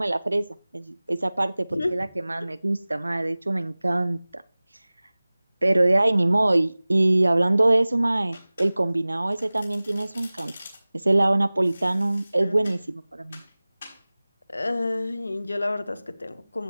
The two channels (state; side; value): inverted; both; correlation -0.99